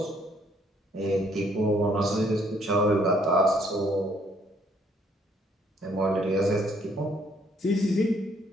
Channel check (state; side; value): normal; both; correlation 0.66